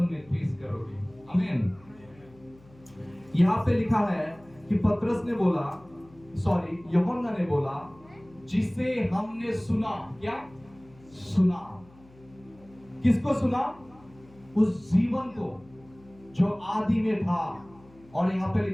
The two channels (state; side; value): noise; left; hum, 25 dB below the sound